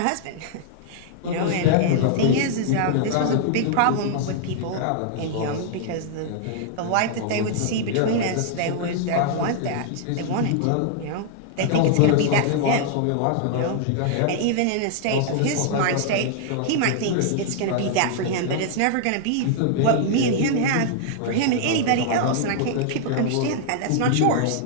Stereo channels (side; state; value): both; different; correlation -0.01